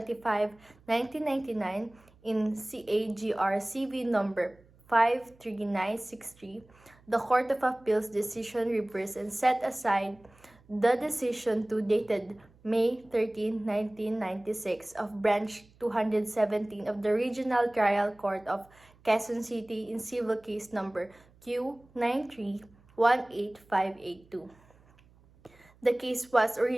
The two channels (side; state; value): right; noise; hum, 29 dB below the sound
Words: 1999 in CAGR CV number 53963. The Court of Appeals decision reversed and set aside the decision 2 dated May 13, 1996 of Branch 217 of the Regional Trial Court of Quezon City in civil case number Q9318582. The case was